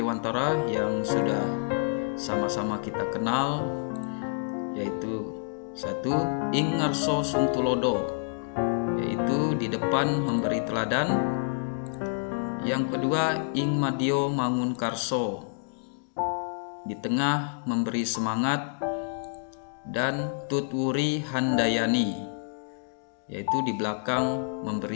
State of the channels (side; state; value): right; silent; digital silence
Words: yang sudah sama-sama kita kenal, yaitu 1. Ing ngarso sung tulodo, yaitu di depan memberi teladan. Yang kedua, ing madyo mangun karso, di tengah memberi semangat. Dan tutwuri handayani, yaitu di belakang